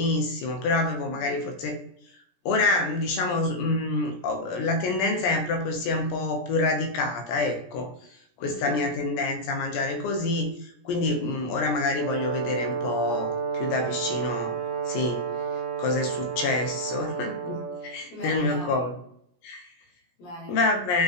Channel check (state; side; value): late; right; 17 ms